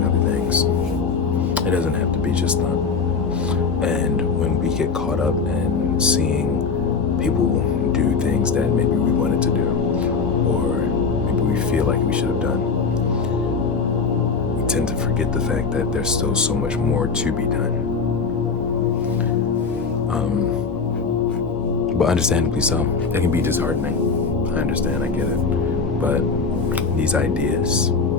other things. It doesn't have to be just that. And when we get caught up in seeing people do things that maybe we wanted to do, or maybe we feel like we should have done, we tend to forget the fact that there's still so much more to be done. But understandably so, it can be disheartening. I understand, I get it. But these ideas,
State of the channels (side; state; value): right; quieter; 5.1 dB